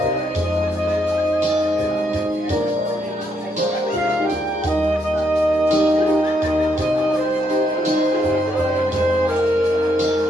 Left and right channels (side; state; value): both; normal; correlation 0.76